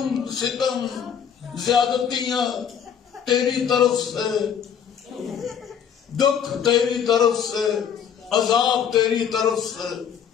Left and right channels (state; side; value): quieter; right; 8.1 dB